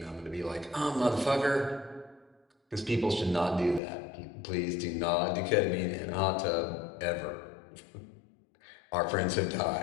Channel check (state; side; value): drops out; right; at 3.8 s